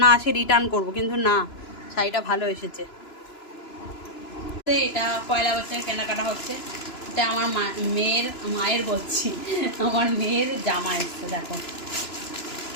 না আসে রিটার্ন করব, কিন্তু না, শাড়িটা ভালো এসেছে। এটা পয়লা বৈশাখের কেনাকাটা হচ্ছে। এটা আমার মায়ের বলছি, আমার মেয়ের জামা এসছে। দেখো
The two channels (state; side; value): late; right; 2.9 ms